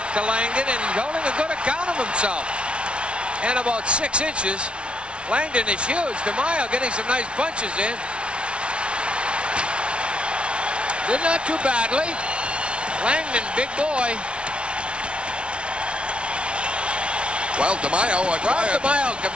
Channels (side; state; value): left; late; 0.059 ms